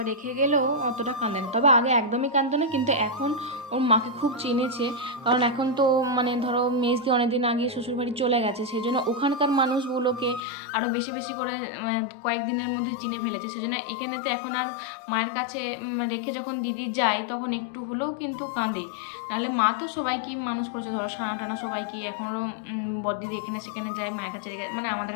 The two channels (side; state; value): right; drops out; at 10.4 s